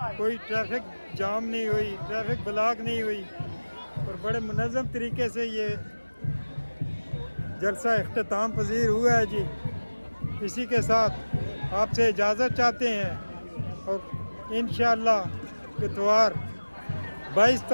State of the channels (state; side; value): inverted; both; correlation -1.00